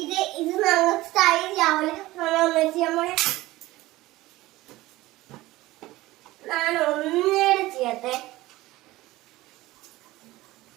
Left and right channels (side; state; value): left; quieter; 18.1 dB